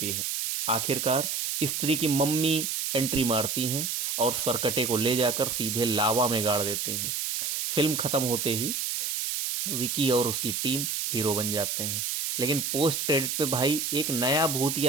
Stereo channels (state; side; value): noise; right; hiss, 1 dB below the sound